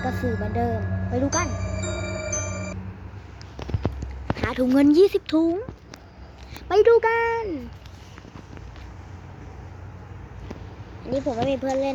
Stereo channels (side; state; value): both; identical; correlation 1.00